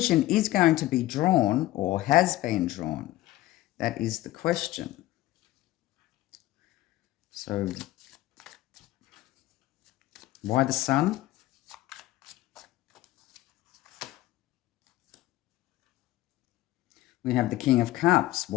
is going to be drawn or has been drawn. That is the question. So why the Sun? We have the King of Cups,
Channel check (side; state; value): right; quieter; 16.1 dB